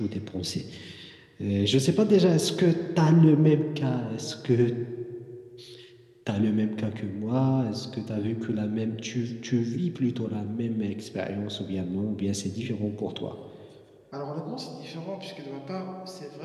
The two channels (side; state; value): both; identical; correlation 1.00